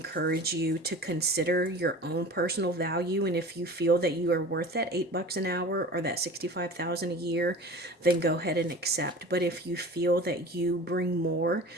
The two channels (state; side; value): normal; both; correlation 0.39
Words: you to consider your own personal value. And if you feel that you are worth that $8 an hour or that 65,000 a year, then go ahead and accept. But if you feel that you bring more